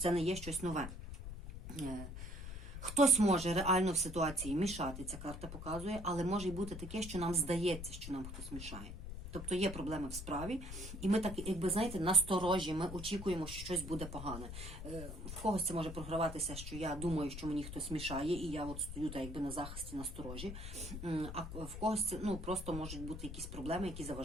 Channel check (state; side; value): noise; left; rumble, 8 dB below the sound